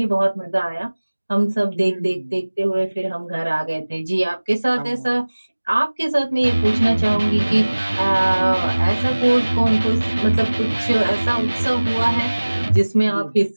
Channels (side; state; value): both; inverted; correlation -1.00